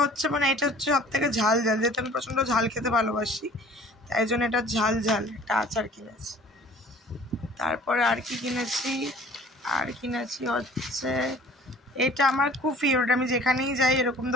হচ্ছে মানে এটা হচ্ছে সব থেকে ঝাল ঝাল, যেহেতু আমি প্রচণ্ড ঝাল খেতে ভালোবাসি তাই জন্য এটা ঝাল ঝাল একটা আচার কিনেছি। তারপরে আর কি কিনেছি, আর কিনেছি হচ্ছে এটা আমার খুব ফেভারিট। আমি যেখানেই যাই এরকম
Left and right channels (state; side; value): normal; both; correlation 0.50